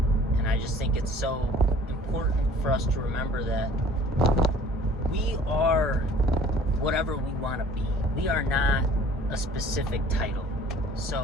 And I just think it's so important for us to remember that we are whatever we want to be. We are not a specific title.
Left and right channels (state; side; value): normal; both; correlation 0.51